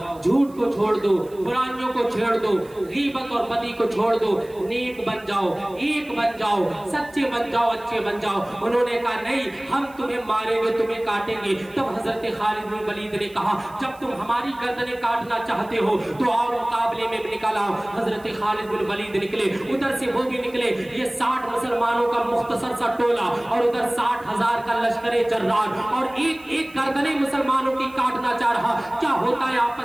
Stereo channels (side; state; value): right; noise; hiss, 26 dB below the sound